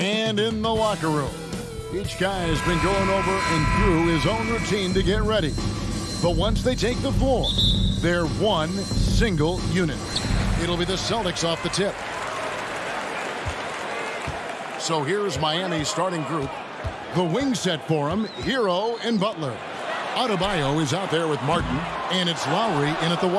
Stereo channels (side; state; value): both; identical; correlation 1.00